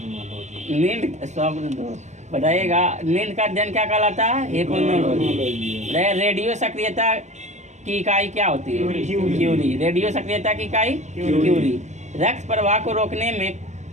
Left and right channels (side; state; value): left; late; 0.34 ms